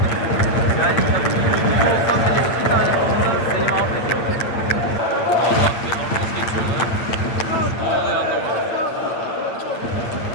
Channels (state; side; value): late; right; 8.6 ms